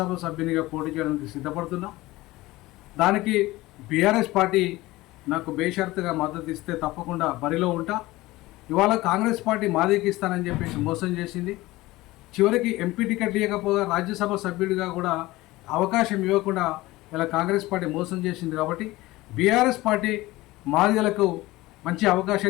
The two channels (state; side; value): quieter; right; 19.0 dB